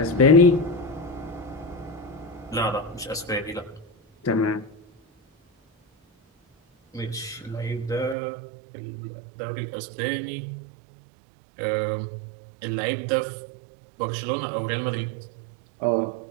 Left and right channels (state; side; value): drops out; left; at 8.2 s